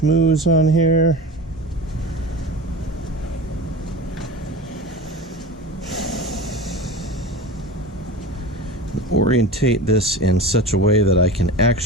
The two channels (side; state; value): both; normal; correlation 0.32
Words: on here. Orientate this in such a way that I can